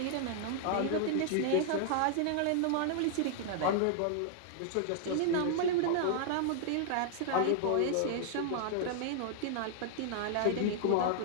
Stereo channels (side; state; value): both; different; correlation -0.01